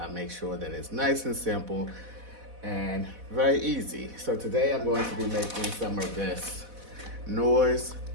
make sure that it's nice and simple and very easy. So, today I'm going to be making some of this Noor's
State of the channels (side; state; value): left; late; 4.1 ms